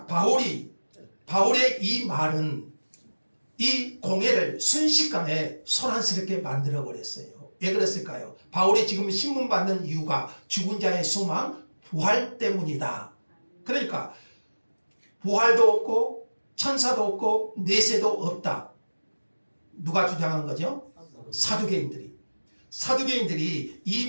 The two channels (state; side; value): inverted; both; correlation -1.00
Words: 바울의 이 말은 이 공회를 순식간에 소란스럽게 만들어 버렸어요. 왜 그랬을까요? 바울이 지금 신문 받는 이유가 죽은 자의 소망, 부활 때문이다. 그러니까 부활도 없고 천사도 없고 내세도 없다. 누가 주장한 거죠? 사두개인들이 이